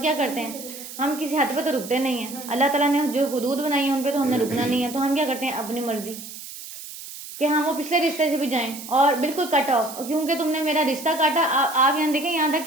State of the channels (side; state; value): right; noise; hiss, 12 dB below the sound